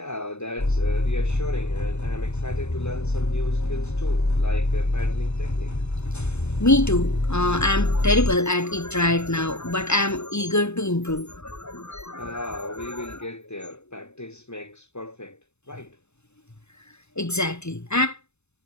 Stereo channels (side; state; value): right; late; 0.81 ms